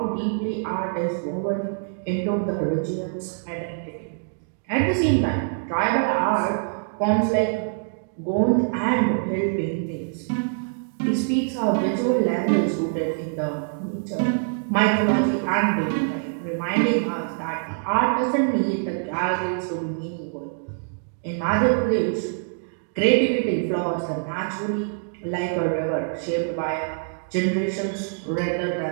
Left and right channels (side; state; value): left; silent; digital silence